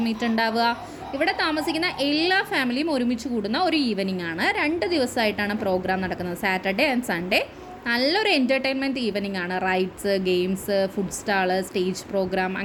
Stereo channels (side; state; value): both; identical; correlation 1.00